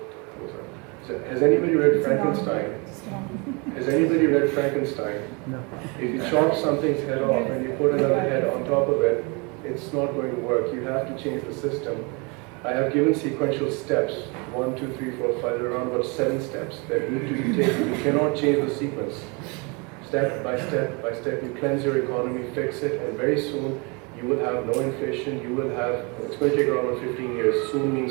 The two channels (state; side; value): quieter; left; 30.5 dB